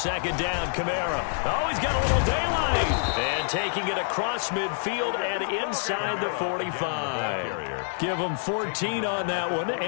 down, Kamara. Oh, he's got a little daylight. And taking it across midfield and inside the 45. Give him 14 on that one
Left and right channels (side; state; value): right; silent; digital silence